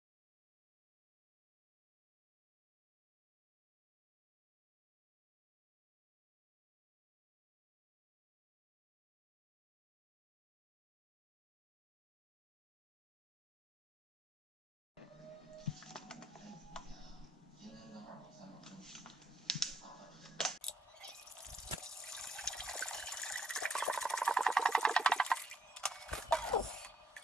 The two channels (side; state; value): both; normal; correlation 0.72